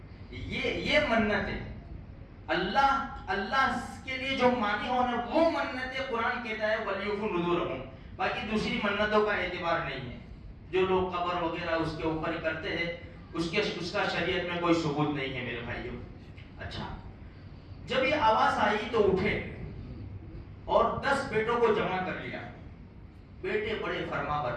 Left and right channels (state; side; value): identical; both; correlation 1.00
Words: یہ منتیں اللہ کے لیے جو مانی ہو نا، وہ منتیں قرآن کہتا ہے وَلْيُوفُوا نُذُورَهُمْ. باقی دوسری منتوں کا اعتبار نہیں ہے. جو لوگ قبر وغیرہ اس کے اوپر کرتے ہیں، اس کا شریعت میں کوئی ثبوت نہیں ہے میرے بھائیوں. اچھا، جب یہ آواز آئی تو اٹھے اور 10 بیٹوں کو جمع کر لیا. بیٹے بڑے فرما